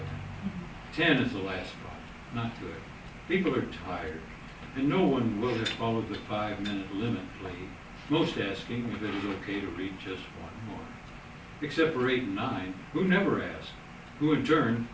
10 is the last spot. Not good. People are tired, and no one will have followed the 5-minute limit plea, most asking if it is okay to read just one more. Except for 8 and 9, who never ask, who in turn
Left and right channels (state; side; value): identical; both; correlation 1.00